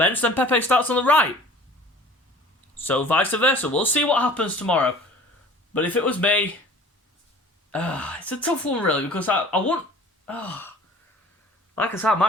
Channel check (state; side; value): normal; both; correlation 0.46